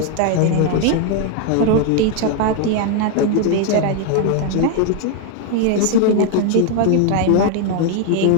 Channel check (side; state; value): both; different; correlation 0.01